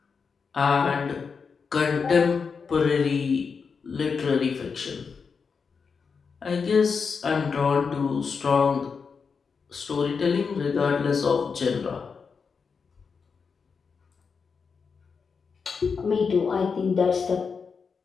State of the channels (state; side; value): quieter; right; 5.5 dB